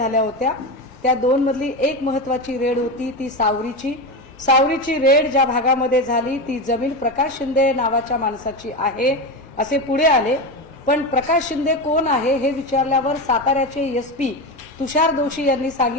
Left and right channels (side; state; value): both; normal; correlation 0.18